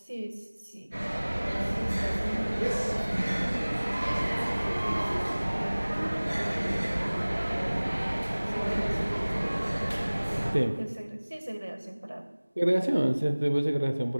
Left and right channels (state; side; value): inverted; both; correlation -1.00